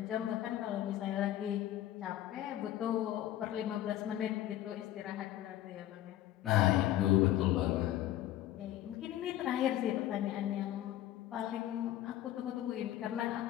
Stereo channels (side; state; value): right; quieter; 13.2 dB